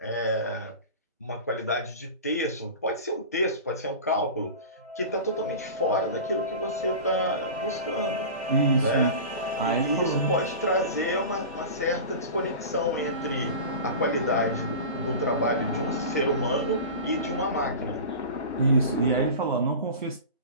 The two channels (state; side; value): inverted; both; correlation -0.32